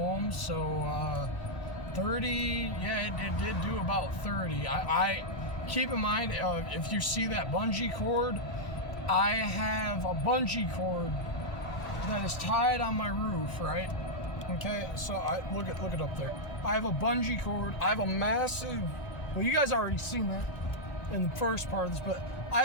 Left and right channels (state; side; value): late; right; 1.4 ms